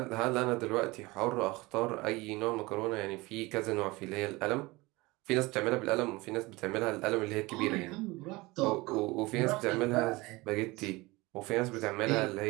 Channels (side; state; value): left; quieter; 22.2 dB